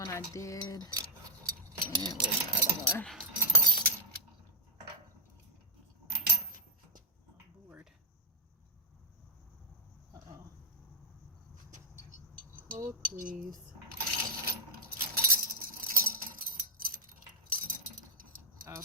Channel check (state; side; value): normal; both; correlation -0.03